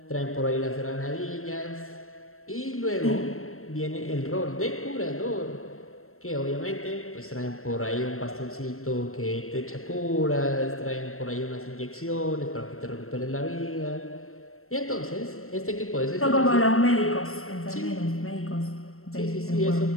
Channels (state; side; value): late; right; 0.63 ms